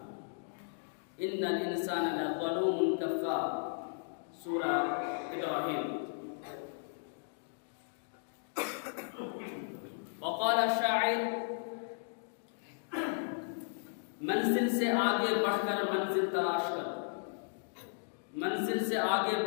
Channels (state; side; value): silent; right; digital silence